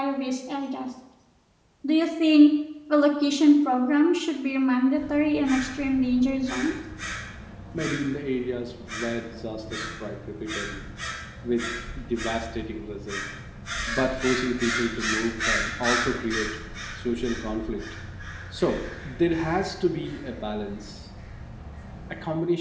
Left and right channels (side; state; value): both; identical; correlation 1.00